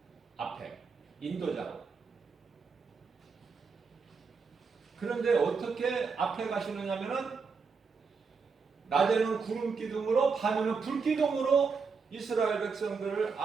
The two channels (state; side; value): quieter; left; 5.1 dB